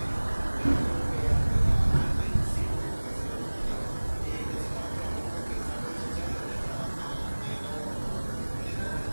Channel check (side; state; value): both; inverted; correlation -1.00